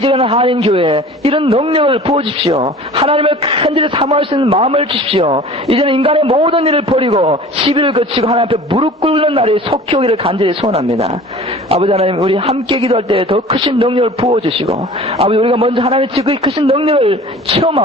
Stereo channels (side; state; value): both; normal; correlation 0.43